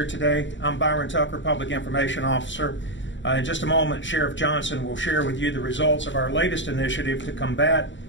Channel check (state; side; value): late; right; 0.54 ms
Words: today. I'm Byron Tucker, Public Information Officer. In just a moment, Sheriff Johnson will share with you the results of our latest initiative to combat